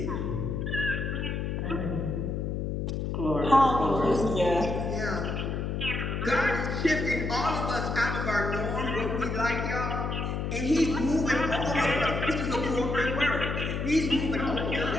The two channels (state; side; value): noise; left; hum, 2 dB below the sound